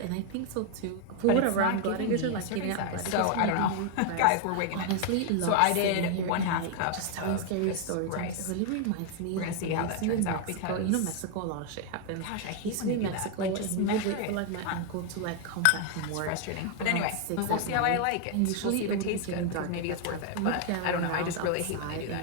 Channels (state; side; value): different; both; correlation 0.00